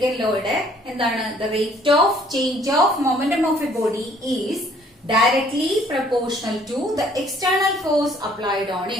ലോയുടെ. എന്താണ്? The rate of change of momentum of a body is directly proportional to the external force applied on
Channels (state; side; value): normal; both; correlation 0.59